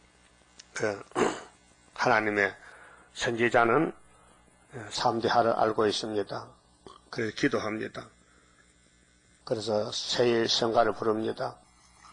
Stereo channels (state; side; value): identical; both; correlation 1.00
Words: 하나님의 선지자는 3대 하를 알고 있습니다. 그래서 기도합니다. 그래서 세일 성가를 부릅니다.